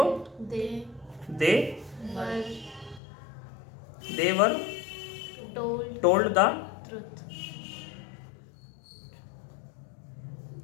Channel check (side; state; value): right; drops out; at 3.0 s